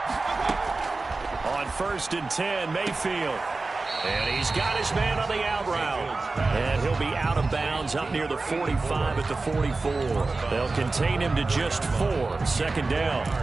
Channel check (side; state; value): left; quieter; 3.6 dB